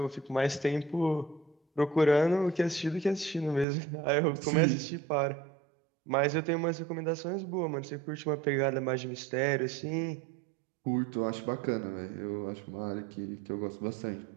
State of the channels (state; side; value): drops out; left; at 3.7 s